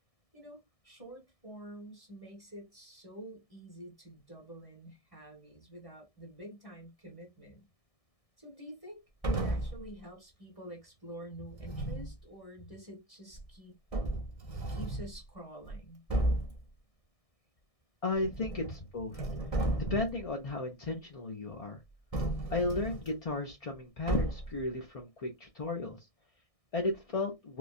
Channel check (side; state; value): right; late; 1.6 ms